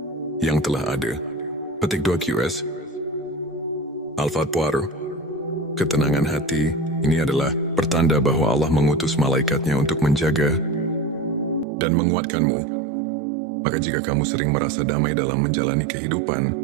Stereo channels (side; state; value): left; drops out; at 11.7 s